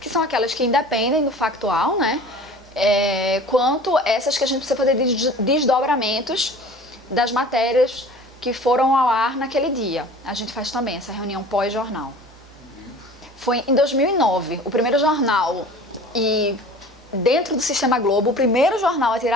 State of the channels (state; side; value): normal; both; correlation 0.43